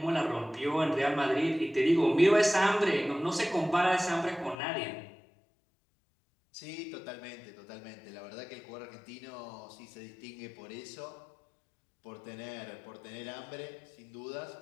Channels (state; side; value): drops out; right; at 4.5 s